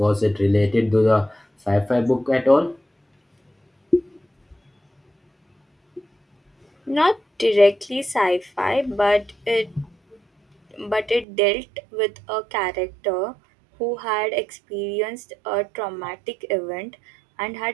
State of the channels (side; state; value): left; drops out; at 11.2 s